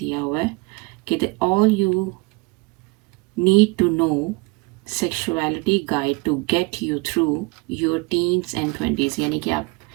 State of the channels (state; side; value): quieter; left; 26.5 dB